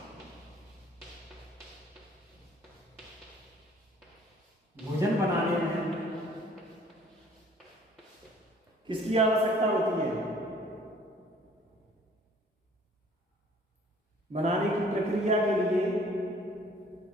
भोजन बनाने में किसकी आवश्यकता होती है? बनाने की प्रक्रिया के लिए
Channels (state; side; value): normal; both; correlation 0.55